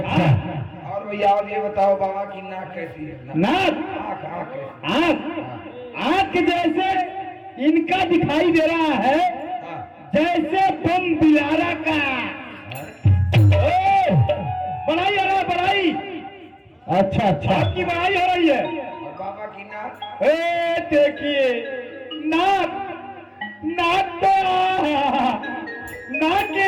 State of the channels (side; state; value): both; identical; correlation 1.00